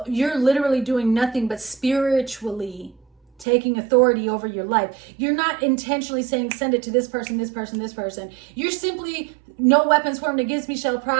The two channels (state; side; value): drops out; left; at 3.5 s